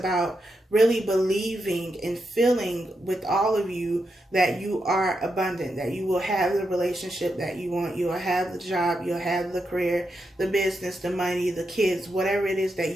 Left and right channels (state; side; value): normal; both; correlation 0.85